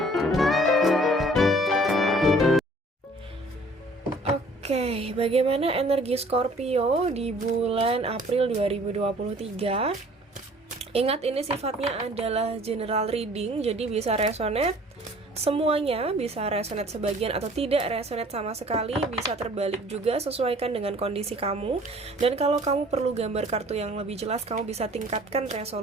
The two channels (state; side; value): normal; both; correlation 0.53